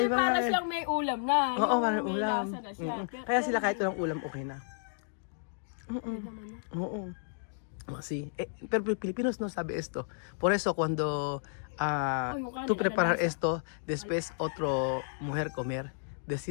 nga Para eh. siyang may ulam na. Oo, Yung parang may ulam. lasa na siya. Kaya sila kahit walang ulam, okay na. Okay naman na. Oo. Sí. Pero Filipinos no sabe esto. Por eso cuando yung kanin, tú preparar alalasa. esto, después otro mujer comer,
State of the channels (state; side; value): silent; right; digital silence